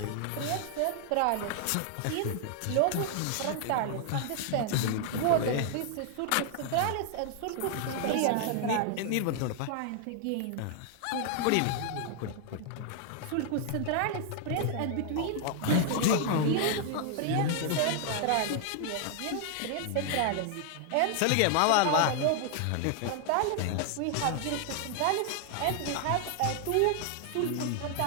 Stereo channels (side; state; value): both; different; correlation 0.00